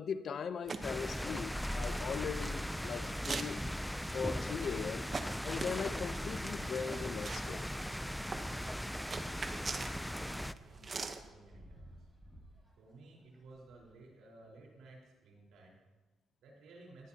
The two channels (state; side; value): normal; both; correlation 0.90